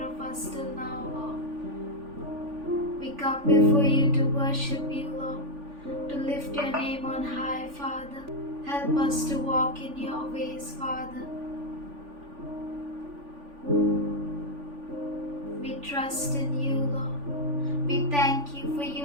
of us till now, Lord. We come before you to worship you, Lord, to lift your name on high, Father. Help us to walk in your ways, Father. We trust in you, Lord. We thank you for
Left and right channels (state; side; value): late; left; 3.5 ms